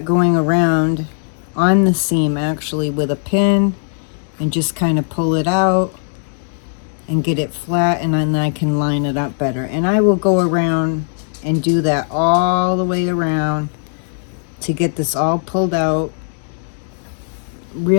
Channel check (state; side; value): silent; right; digital silence